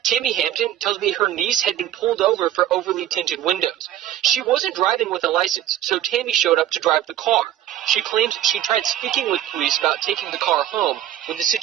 Tammy Hampton tells me her niece had been pulled over for overly tinted windows. She wasn't driving with a license, so Tammy showed up to drive the car. She claims she tried speaking with police about taking the car home when the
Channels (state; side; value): quieter; left; 12.2 dB